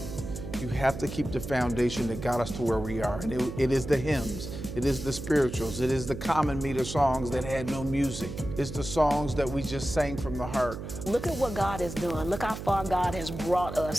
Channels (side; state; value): right; noise; hum, 8 dB below the sound